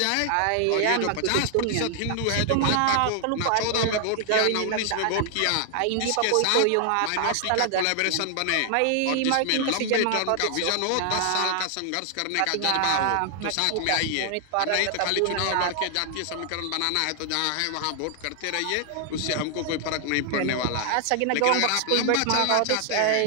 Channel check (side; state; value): both; different; correlation 0.00